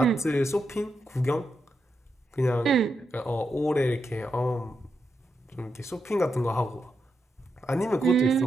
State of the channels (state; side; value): normal; both; correlation 0.85